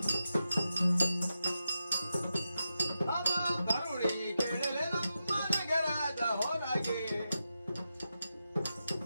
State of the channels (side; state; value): both; inverted; correlation -0.89